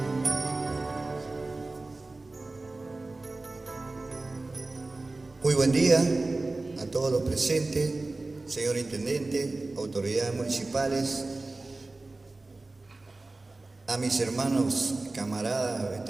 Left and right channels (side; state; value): left; quieter; 3.2 dB